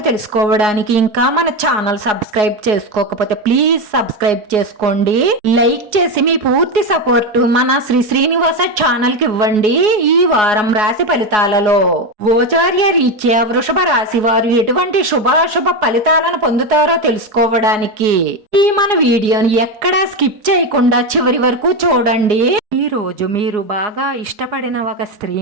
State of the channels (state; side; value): late; left; 4.8 ms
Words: తెలుసుకోవడానికి ఇంకా మన ఛానల్ సబ్స్క్రైబ్ చేసుకోకపోతే ప్లీజ్ సబ్స్క్రైబ్ చేసుకోండి. లైక్ చేసి మీ పూర్తి సపోర్ట్ మన శ్రీనివాస ఛానల్ కి ఇవ్వండి. ఈ వారం రాశి ఫలితాలలో గోచార్య రీత్యా వృషభ రాశి వారు ఎటువంటి శుభాశుభ ఫలితాలను పొందుతారో తెలుసుకోవడానికి ఈ మన వీడియోని ఎక్కడా స్కిప్ చేయకుండా చివరి వరకు చూడండి. ఈ రోజు మీరు బాగా ఇష్టపడిన ఒక స్త్రీ